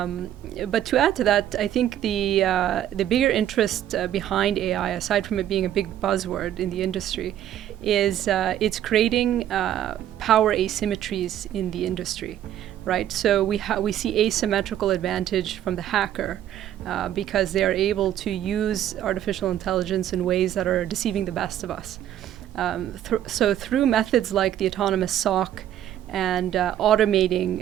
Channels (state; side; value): quieter; left; 11.4 dB